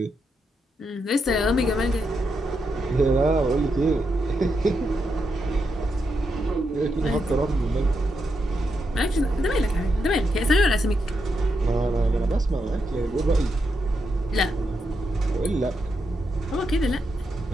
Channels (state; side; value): normal; both; correlation 0.83